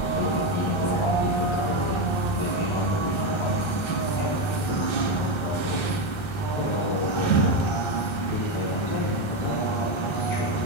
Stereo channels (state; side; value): late; right; 1.3 ms